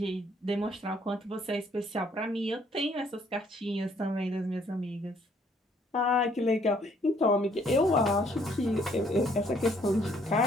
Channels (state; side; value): normal; both; correlation 0.65